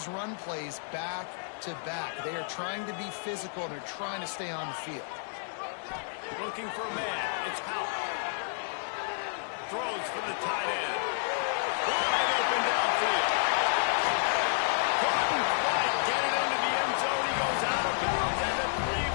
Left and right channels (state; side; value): silent; right; digital silence